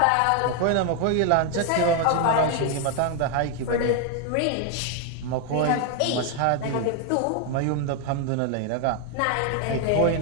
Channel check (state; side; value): different; both; correlation 0.01